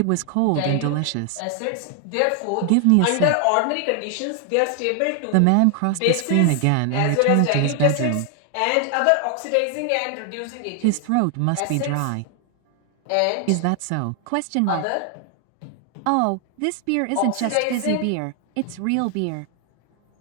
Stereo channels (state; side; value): different; both; correlation 0.00